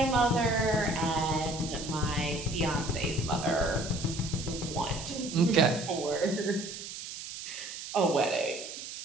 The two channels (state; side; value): noise; right; hiss, 10 dB below the sound